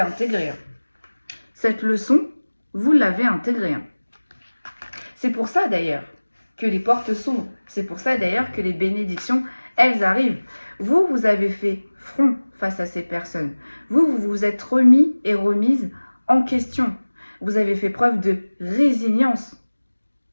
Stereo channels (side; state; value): both; inverted; correlation -1.00